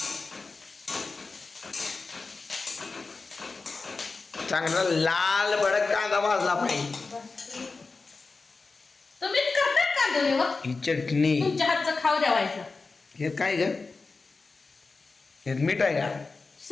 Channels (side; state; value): right; quieter; 4.0 dB